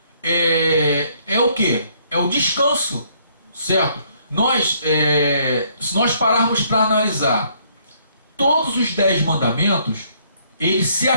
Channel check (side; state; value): both; inverted; correlation -0.66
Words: é o quê? É o descanso. Certo? Se nós pararmos para analisar todos os 10 mandamentos, ele se